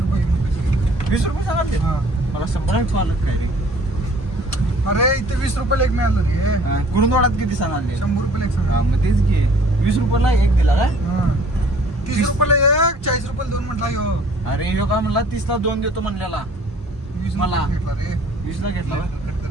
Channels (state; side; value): normal; both; correlation 0.54